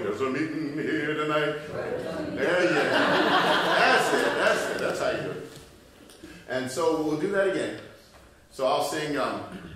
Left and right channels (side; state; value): both; identical; correlation 1.00